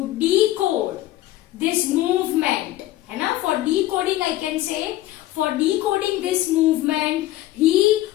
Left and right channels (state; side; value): quieter; right; 15.4 dB